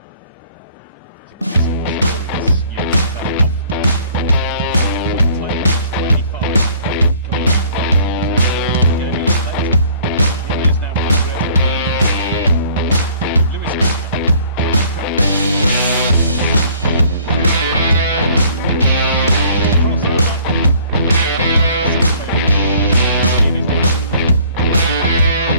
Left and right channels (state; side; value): inverted; both; correlation -0.55